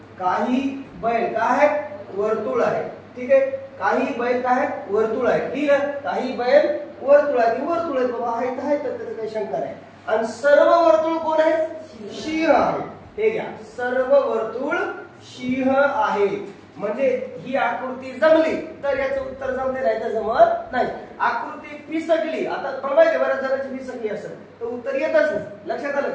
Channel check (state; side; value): identical; both; correlation 1.00